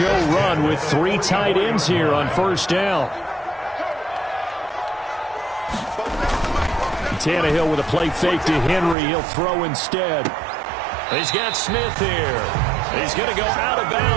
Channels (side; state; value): left; drops out; at 9.0 s